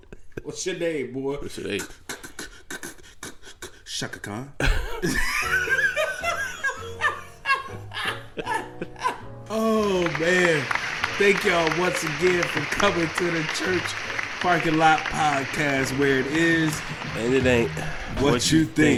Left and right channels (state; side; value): identical; both; correlation 1.00